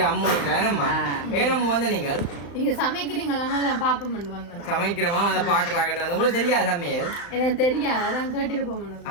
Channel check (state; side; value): late; right; 35 ms